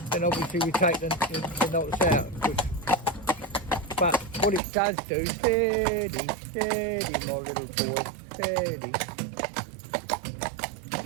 Then obviously we take the knots out. But what it does do, steady, my little boy, steady.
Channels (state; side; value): drops out; left; at 4.6 s